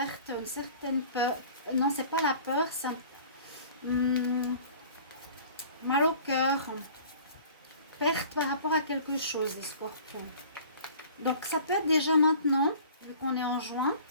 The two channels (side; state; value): both; inverted; correlation -0.47